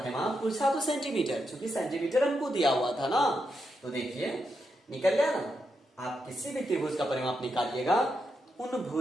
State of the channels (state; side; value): normal; both; correlation 0.84